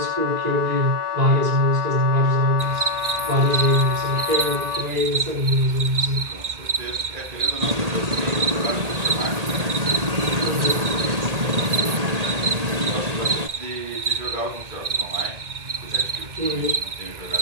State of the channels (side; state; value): left; late; 1.8 ms